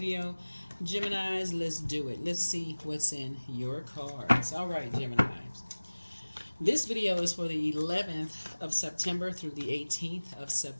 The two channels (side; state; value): both; inverted; correlation -1.00